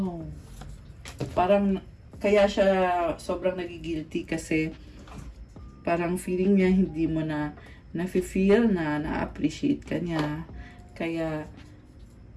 Parang, kaya siya sobrang nagigilty kasi parang feeling niya hindi mo na nafe-feel na-appreciate ka niya. Kaya,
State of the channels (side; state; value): both; identical; correlation 1.00